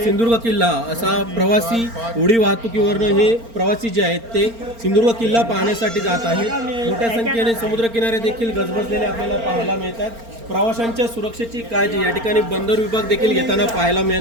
सिंधुदुर्ग किल्ला असा प्रवासी उडी वाहतुकीवरनं हे प्रवासी जे आहेत ते सिंधुदुर्ग किल्ला पाहण्यासाठी जात आहेत। मोठ्या संख्येने समुद्रकिनारे देखील गजबजलेले आपल्याला पाहायला मिळतात। प्रवाशांच्या सुरक्षेची काळजी या ठिकाणी बंदर विभाग देखील घेताना पाहायला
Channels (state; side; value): late; left; 4.4 ms